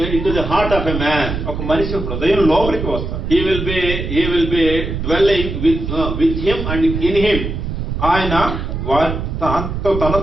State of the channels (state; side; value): noise; right; rumble, 4 dB below the sound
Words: into the heart of a man. ఒక మనిషి హృదయం లోపలికి వస్తాడు. He will be dwelling with him and in him. ఆయన